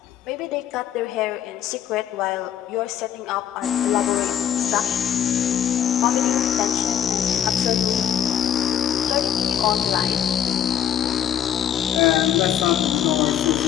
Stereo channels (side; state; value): right; quieter; 9.6 dB